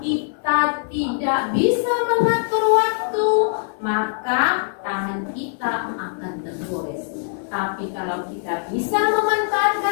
tidak bisa mengatur waktu, maka tangan kita akan tergores. Tapi kalau kita bisa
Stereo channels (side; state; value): right; silent; digital silence